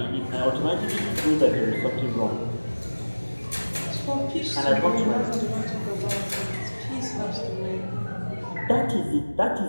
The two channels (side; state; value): both; inverted; correlation -1.00